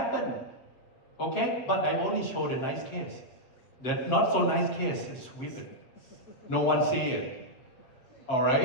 Okay? But I only show the nice case. The not so nice case is sweep it. No one see it.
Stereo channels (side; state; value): right; late; 8.0 ms